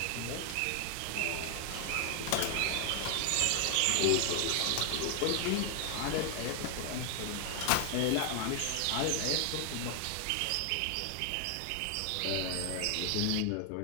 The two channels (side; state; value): both; different; correlation 0.00